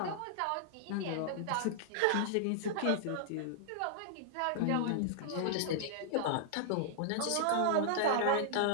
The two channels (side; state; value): both; different; correlation -0.01